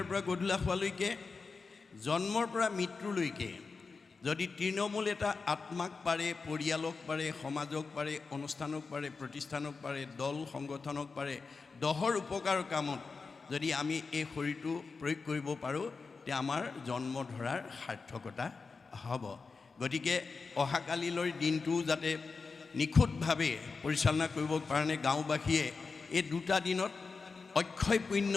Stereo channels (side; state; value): right; quieter; 4.5 dB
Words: পৰা গধূলা হোৱালৈকে, জন্মৰ পৰা মৃত্যুলৈকে যদি তৃণমূল এটা আত্মাক পাৰে, পৰিয়ালক পাৰে, সমাজক পাৰে, অনুষ্ঠানক পাৰে, প্ৰতিষ্ঠানক পাৰে, দল সংগঠনক পাৰে, দহৰ উপকাৰ কামত যদি আমি এই শৰীৰটো প্ৰয়োগ কৰিব পাৰোঁ, তেতিয়া আমাৰ জন্ম ধৰাৰ সাৰ্থকতা হ'ব। গতিকে অহাকালিলৈ দিনটো যাতে নিখুঁতভাৱে পৰিচালনা কৰিবৰ কাৰণে গাঁওবাসীয়ে এই দুটা দিনত অক্ষয় পুণ্য